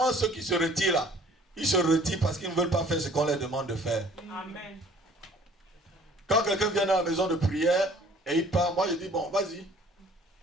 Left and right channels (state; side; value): normal; both; correlation 0.54